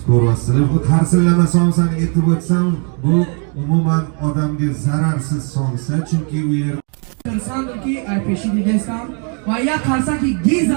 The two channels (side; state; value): left; quieter; 39.4 dB